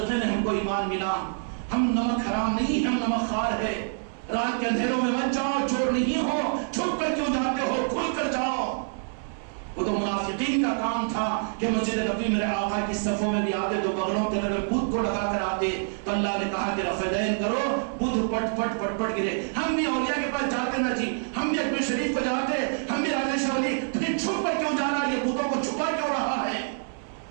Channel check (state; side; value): silent; left; 59 dB below the other